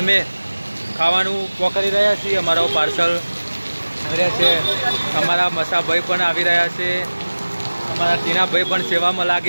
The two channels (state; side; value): inverted; both; correlation -1.00